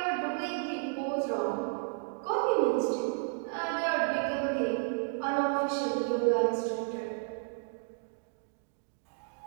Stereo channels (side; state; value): left; silent; digital silence